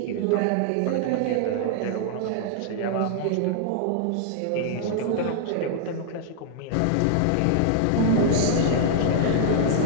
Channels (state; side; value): different; both; correlation -0.01